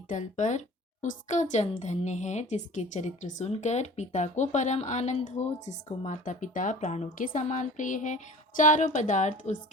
तल पर उसका जन्म धन्य है, जिसके चरित्र सुनकर पिता को परम आनंद हो, जिसको माता पिता प्राणों के समान प्रिय है। चारों पदार्थ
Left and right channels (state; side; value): normal; both; correlation 0.43